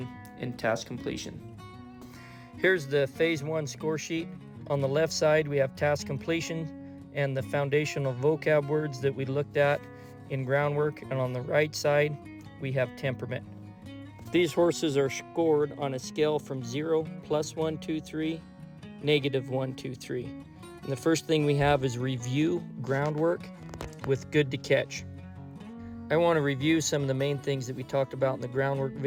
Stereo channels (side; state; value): both; identical; correlation 1.00